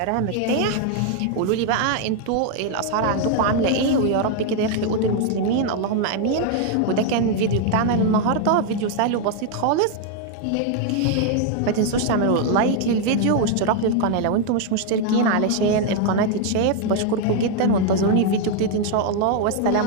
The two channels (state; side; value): different; both; correlation 0.00